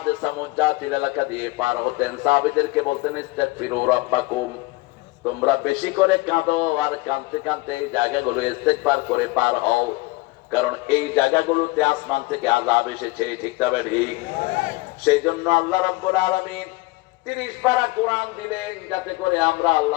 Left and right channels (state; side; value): quieter; right; 21.9 dB